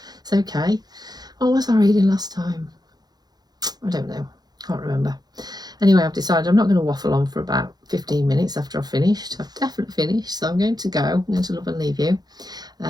It's okay. What was I reading last time? I don't know. Can't remember. Anyway, I've decided I'm not going to waffle on for about 15 minutes after I've finished. I've definitely finished, so I'm going to go. I'm going to love and leave you.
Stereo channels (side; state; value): left; late; 0.19 ms